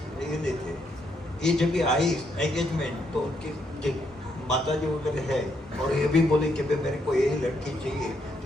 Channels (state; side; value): normal; both; correlation 0.76